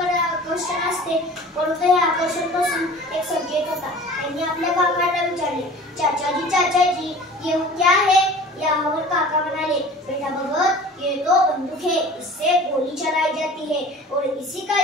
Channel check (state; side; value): normal; both; correlation 0.43